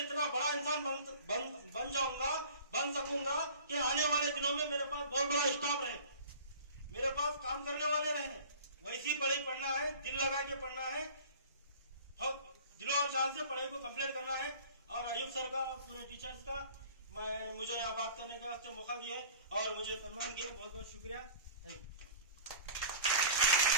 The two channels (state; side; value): inverted; both; correlation -0.43